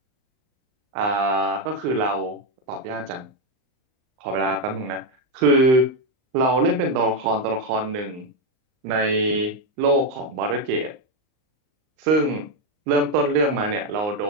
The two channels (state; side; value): late; left; 39 ms